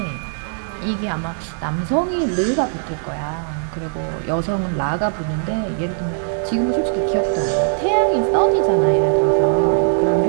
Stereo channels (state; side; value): silent; left; digital silence